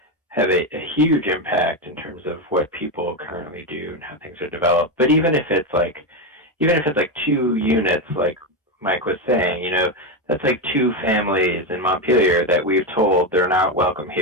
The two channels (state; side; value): normal; both; correlation 0.11